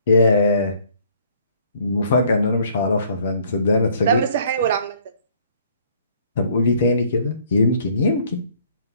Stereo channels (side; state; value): both; inverted; correlation -0.60